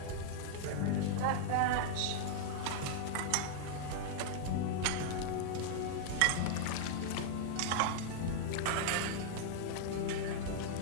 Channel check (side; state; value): both; different; correlation -0.01